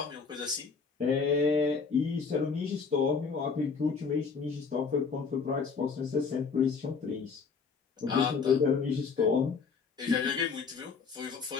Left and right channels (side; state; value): right; quieter; 5.3 dB